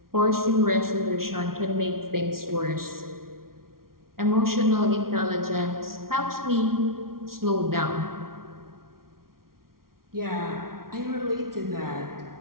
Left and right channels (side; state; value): left; late; 0.93 ms